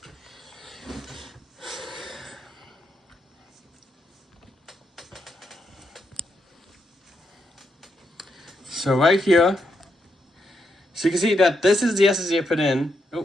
So right here, so you can see that this is the SSD I put in. Oh,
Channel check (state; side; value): normal; both; correlation 0.81